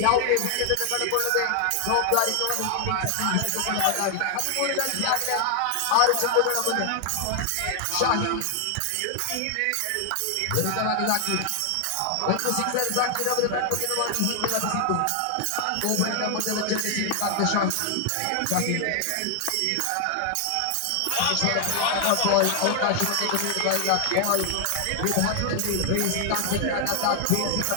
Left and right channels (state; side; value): different; both; correlation 0.00